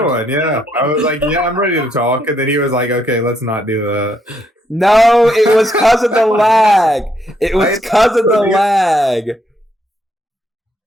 one. Yeah, I was like, yeah, I'm ready to talk, and then he was like, okay, let's not do that. No, it was because of the lag. It was because of the lag.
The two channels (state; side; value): normal; both; correlation 0.74